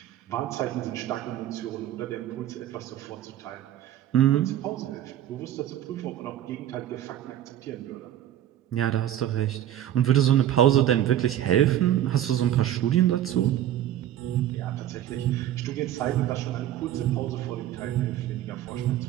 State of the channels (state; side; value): quieter; left; 11.8 dB